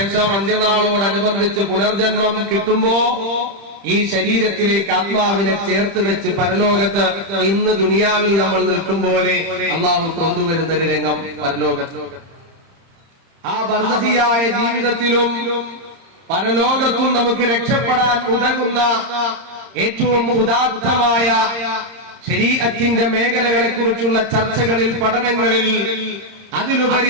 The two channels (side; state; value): left; late; 30 ms